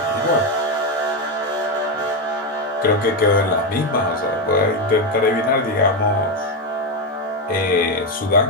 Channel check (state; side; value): normal; both; correlation 0.09